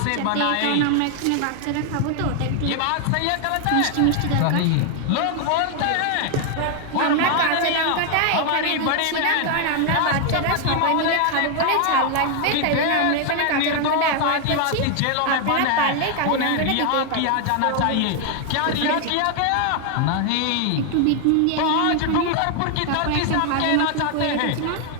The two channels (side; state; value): both; different; correlation 0.00